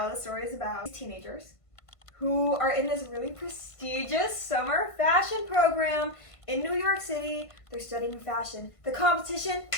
the story is about teenagers who are in this really prestigious summer fashion program in New York City. They're studying fashion. The competition,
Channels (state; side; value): late; right; 1.5 ms